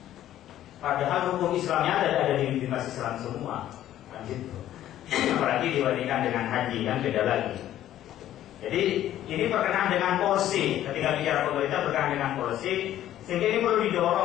Padahal hukum Islamnya ada di Bimas Islam semua, kan gitu. Apalagi dibandingkan dengan haji kan beda lagi. Jadi ini berkenaan dengan policy. Ketika bicara pemerintah berkenaan dengan policy, sehingga ini perlu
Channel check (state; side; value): quieter; right; 12.5 dB